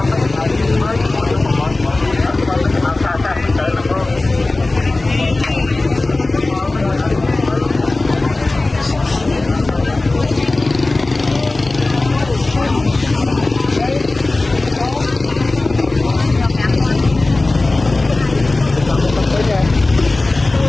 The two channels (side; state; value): right; quieter; 3.1 dB